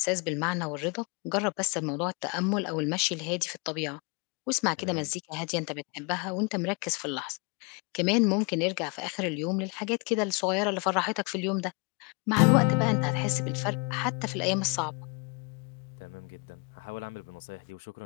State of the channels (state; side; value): quieter; right; 32.9 dB